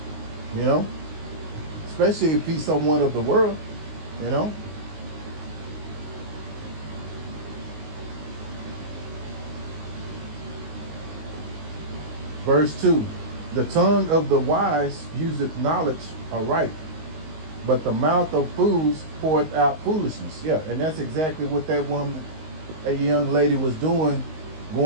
Especially if he's someone of the world. Verse 2, the tongue of the wise useth knowledge aright, but the mouth of fools poureth out foolishness. Yeah, and that's exactly what that young lady was doing,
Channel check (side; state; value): left; late; 19 ms